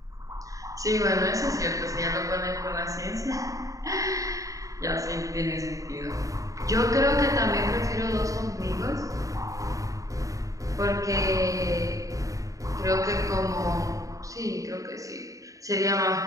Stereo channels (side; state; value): left; late; 0.16 ms